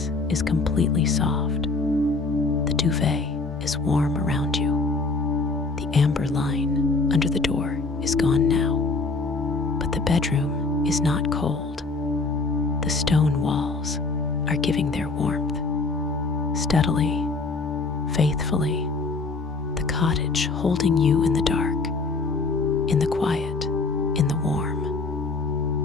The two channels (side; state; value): right; quieter; 3.8 dB